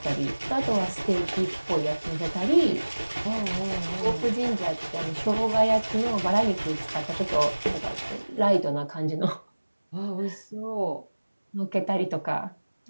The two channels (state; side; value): inverted; both; correlation -1.00